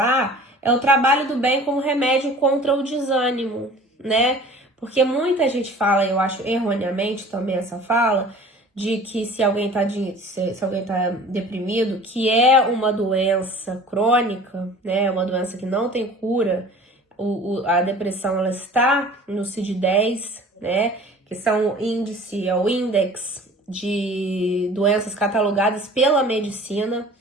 é o trabalho do bem como remédio contra o desânimo, né? Porque muita gente fala, eu acho erroneamente também essa fala, de que se alguém tá deprimido, que é uma doença crônica, né? Uma doença que não tem cura. A depressão, ela está no CID-10, né? Que são o índex de doenças catalogadas pela medicina,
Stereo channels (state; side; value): normal; both; correlation 0.45